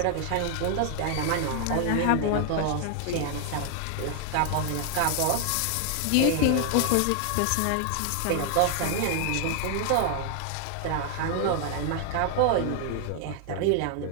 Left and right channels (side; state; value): both; different; correlation 0.00